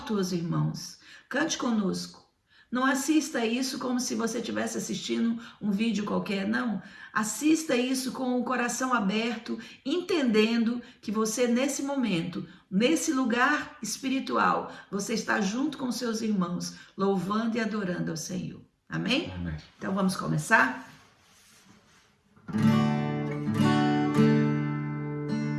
os irmãos, cante conosco. Não assista isso como se você estivesse assistindo um vídeo qualquer, não. Assista isso com o coração aberto, entendendo que você nesse momento, nesse lugar espiritual, você está junto com seus irmãos, louvando e adorando ao Senhor. Amém? Amém. Então vamos começar?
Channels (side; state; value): both; identical; correlation 1.00